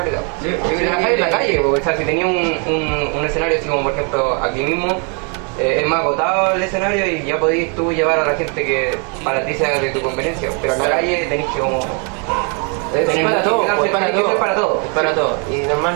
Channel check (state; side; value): quieter; left; 37.5 dB